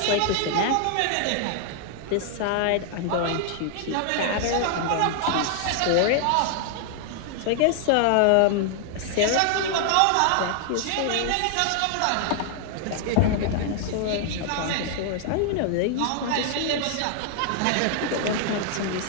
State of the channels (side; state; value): both; different; correlation 0.00